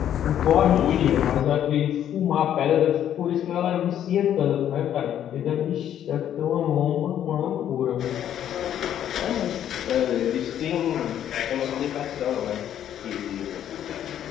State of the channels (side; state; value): right; quieter; 10.5 dB